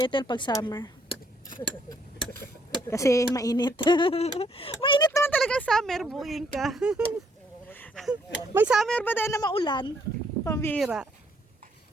Ethel pag summer. Kasi mainit. Mainit naman talaga summer, buing ka. May summer ba dahil na maulan? Pambira.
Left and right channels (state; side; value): normal; both; correlation 0.69